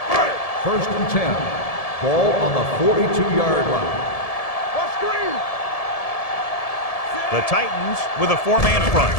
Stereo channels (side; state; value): right; late; 1.7 ms